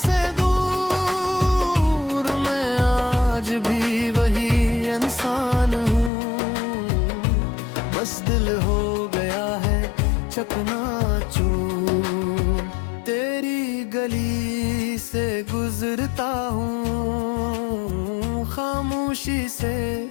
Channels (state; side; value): drops out; right; at 6.1 s